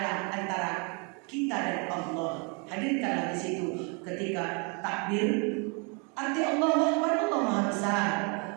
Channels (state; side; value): quieter; left; 34.1 dB